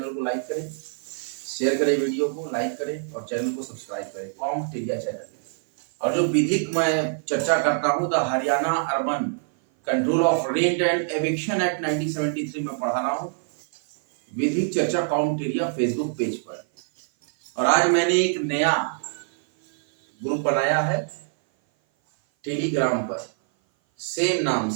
को लाइक करें, शेयर करें, वीडियो को लाइक करें और चैनल को सब्सक्राइब करें, कॉम्टेरिया चैनल। और जो विधिक मैं चर्चा करता हूँ, the Haryana urban control of rent and eviction act 1973 में पढ़ा रहा हूँ, विधिक चर्चा कॉम्टेरिया फेसबुक पेज पर। और आज मैंने एक नया ग्रुप बनाया है टेलीग्राम पर, सेम नाम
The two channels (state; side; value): silent; left; 57 dB below the other